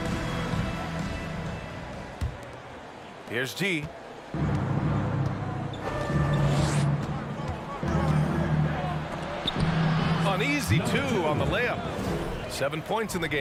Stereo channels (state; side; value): identical; both; correlation 1.00